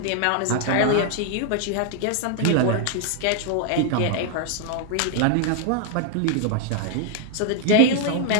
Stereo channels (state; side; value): different; both; correlation 0.00